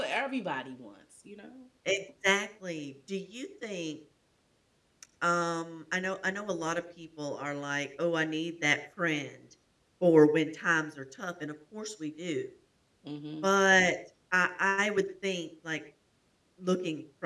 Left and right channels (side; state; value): both; identical; correlation 1.00